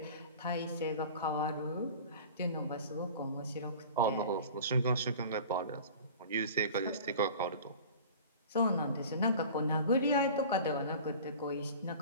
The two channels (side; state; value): both; inverted; correlation -0.40